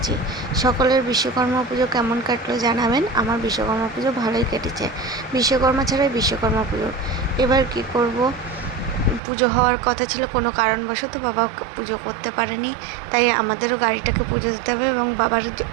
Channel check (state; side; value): drops out; left; at 9.2 s